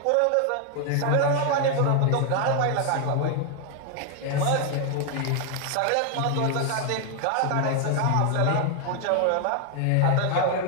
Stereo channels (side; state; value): both; different; correlation 0.00